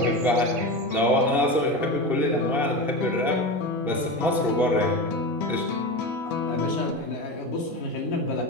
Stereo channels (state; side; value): normal; both; correlation 0.23